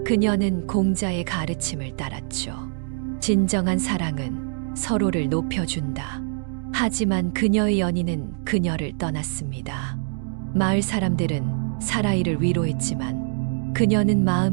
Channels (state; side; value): silent; left; digital silence